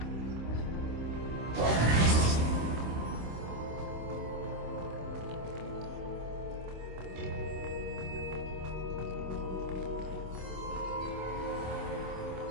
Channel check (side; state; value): left; late; 26 ms